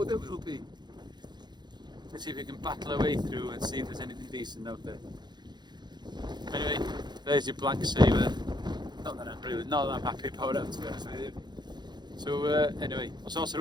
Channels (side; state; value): left; late; 0.21 ms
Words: there will be. Let's see if we can battle our way through and see if there's anything decent out there. Anyway, there's your black saver. Not that I'm happy about it, to be honest with you. So anyway, os oes